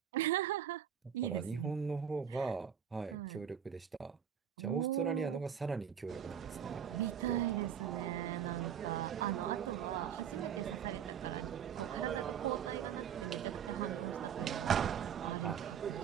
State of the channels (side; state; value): left; quieter; 8.6 dB